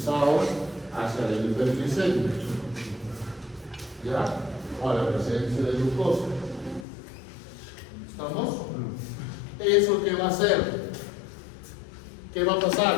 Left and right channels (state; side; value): drops out; right; at 6.9 s